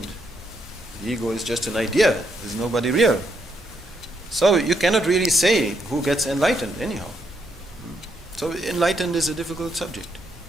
The ego is just an idea, there's nobody real. So you cannot really say who gets enlightened anyhow. So enlightened is a difficult subject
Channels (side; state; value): both; normal; correlation 0.76